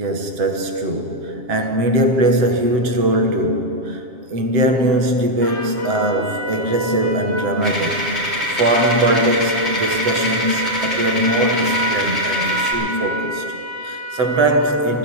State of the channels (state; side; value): late; left; 7.4 ms